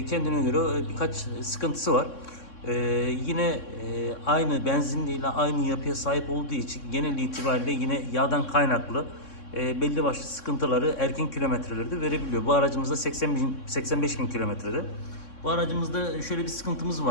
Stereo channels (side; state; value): right; late; 3.6 ms